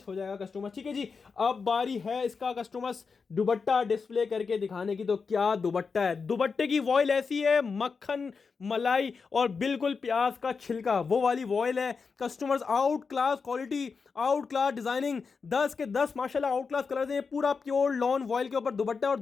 हो जाएगा कस्टमर, ठीक है जी। अब बारी है इसका कस्टमर्स दुपट्टा डिस्प्ले करके दिखाने की। तो क्या दुपट्टा है, दुपट्टे की वॉइल ऐसी है मक्खन मलाई और बिल्कुल प्याज का छिलका, वो वाली वॉइल है customers. Out class quality, out class designing, 10 के 10 माशाल्लाह आउट क्लास कलर्स हैं। पूरा प्योर लॉन वॉइल के ऊपर दुपट्टा और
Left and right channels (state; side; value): quieter; right; 5.1 dB